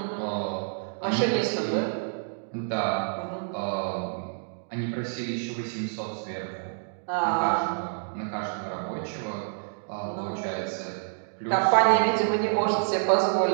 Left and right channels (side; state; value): left; silent; digital silence